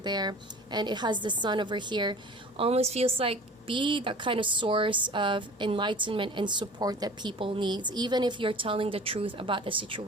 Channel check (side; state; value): both; normal; correlation 0.43